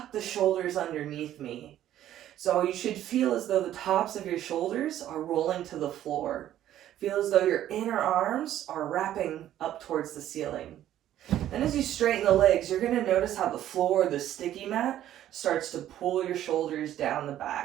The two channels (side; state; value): left; quieter; 12.2 dB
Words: the shoulders underneath me. So you should feel as though the tops of your shoulders are rolling to the floor. Feel as though your inner arms are wrapping up towards the ceiling. Then as you straighten the legs, you're going to notice how the floor, the sticky mat, starts to pull your shoulders down the